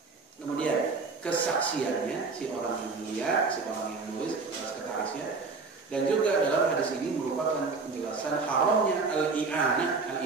Kemudian kesaksiannya, si orang yang melihat, si orang yang nulis, sekretarisnya. Dan juga dalam hadis ini merupakan penjelasan haramnya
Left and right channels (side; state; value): left; quieter; 4.3 dB